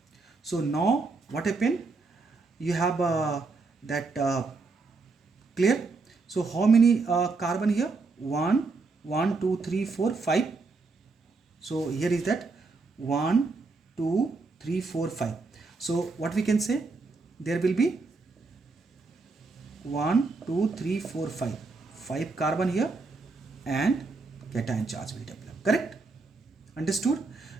So now what happened? You have clear? So how many carbon here? 1, 2, 3, 4, 5. So here is that 1, 2, 3, 4, 5. So what we can say? There will be 1, 2, 3, 4, 5. 5 carbon here and cation charge will develop. Correct? Understood?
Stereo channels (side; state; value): left; quieter; 4.0 dB